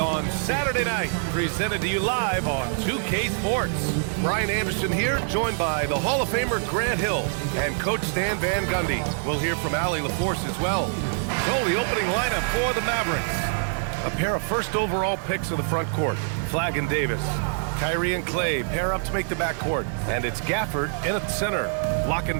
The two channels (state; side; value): silent; left; digital silence